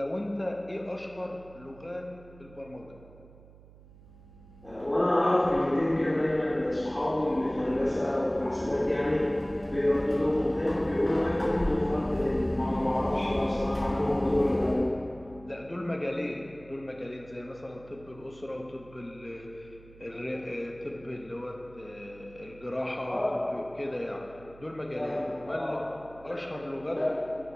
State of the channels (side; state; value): right; noise; hum, 22 dB below the sound